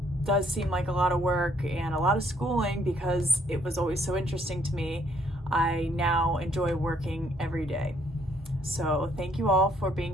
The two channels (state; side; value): normal; both; correlation 0.67